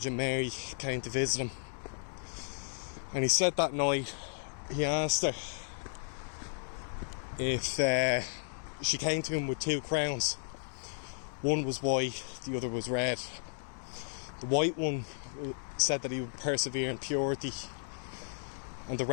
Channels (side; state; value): right; silent; digital silence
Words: Mary, came to visit him. And he said that night, he asked her if she came to him with two crowns. One was white, the other was red. The white one said that he would persevere in purity, and the